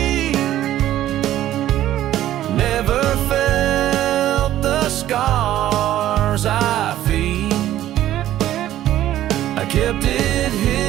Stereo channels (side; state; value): left; quieter; 13.1 dB